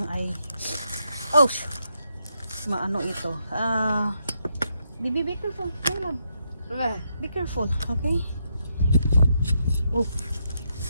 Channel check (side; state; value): both; inverted; correlation -0.80